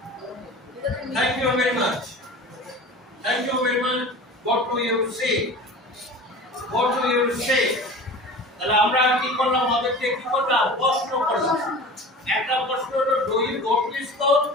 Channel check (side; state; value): both; normal; correlation 0.38